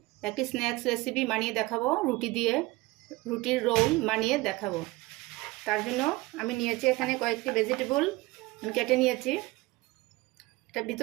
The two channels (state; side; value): quieter; left; 21.2 dB